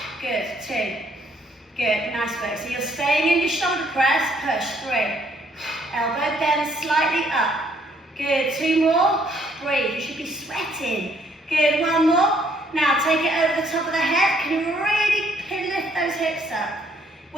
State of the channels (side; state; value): both; normal; correlation 0.67